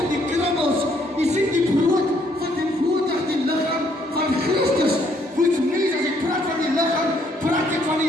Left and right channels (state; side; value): normal; both; correlation 0.68